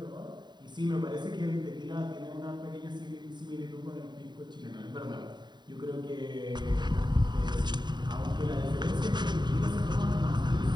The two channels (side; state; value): left; late; 0.21 ms